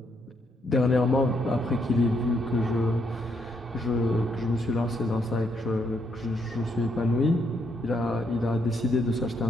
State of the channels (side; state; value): both; normal; correlation 0.75